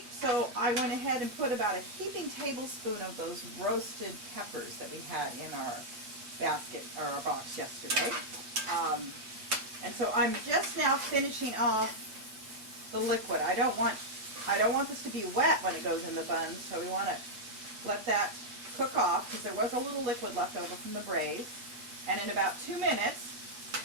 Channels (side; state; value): left; late; 8.3 ms